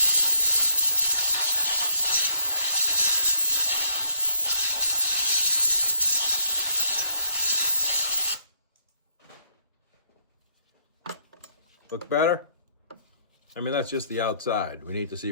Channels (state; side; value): inverted; both; correlation -0.69